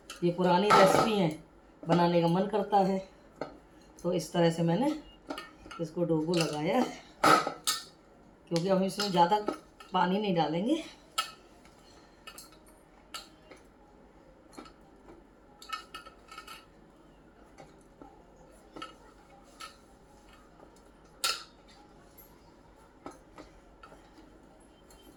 ये पुरानी रेसिपी हैं, बनाने का मन करता है। तो इस तरह से मैंने इसको डो को लगाया, क्योंकि हम इसमें ज़्यादा पानी नहीं डालेंगे।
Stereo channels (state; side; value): identical; both; correlation 1.00